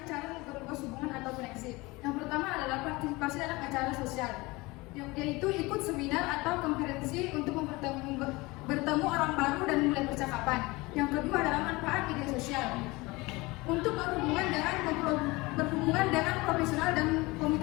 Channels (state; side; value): quieter; right; 22.8 dB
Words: cara memperluas hubungan atau koneksi. Yang pertama adalah partisipasi dalam acara sosial, yaitu ikut seminar atau konferensi untuk bertemu orang baru dan mulai percakapan. Yang kedua adalah manfaat media sosial untuk berhubungan dengan profesional dan